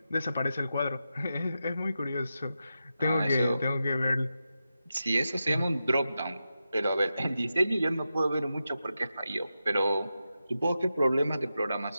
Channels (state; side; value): inverted; both; correlation -0.90